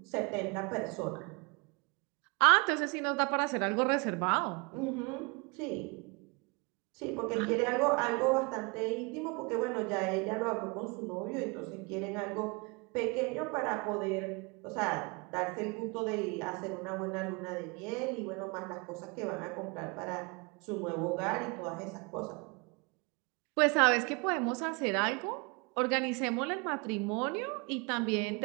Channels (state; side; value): quieter; left; 29.9 dB